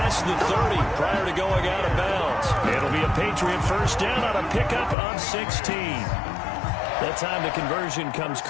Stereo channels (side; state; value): right; drops out; at 5.0 s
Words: the 30 prior to going out of bounds. It'll be a Patriot first down on a pickup of 16. That time the conversion comes